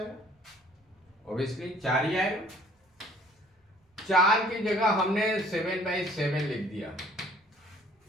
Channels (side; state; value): both; normal; correlation 0.56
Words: ऑब्वियसली 4 ही आएगा। 4 की जगह हमने 7/7 लिख दिया,